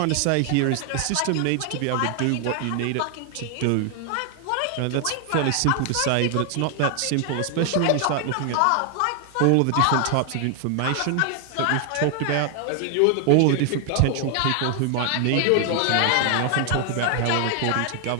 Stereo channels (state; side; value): different; both; correlation 0.00